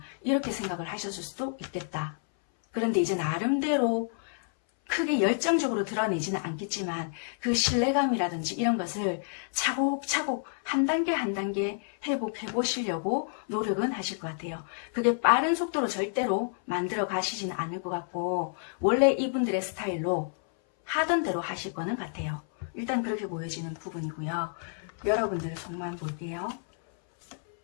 이렇게 생각을 하셨을 수도 있겠다. 그런데 이제 나름대로 크게 열정적으로 드러내지는 않겠지만 그 신뢰감이라든지 이런 것을 차곡차곡 한 단계 한 단계 회복해 보시려고 노력은 하실 것 같아요. 그게 빠른 속도로 절대로 만들어 가시지는 않을 것 같고 원래 이분들의 스타일로 하던 대로 하실 거는 같아요. 일단 그렇게 보여지는 부분이고요. 여러분들의 속만 볼게요.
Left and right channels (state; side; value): silent; right; 58 dB below the other